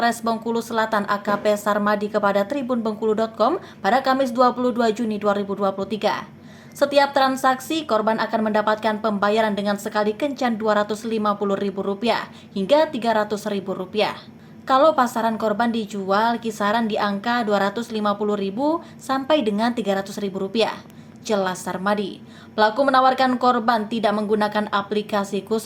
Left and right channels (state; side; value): identical; both; correlation 1.00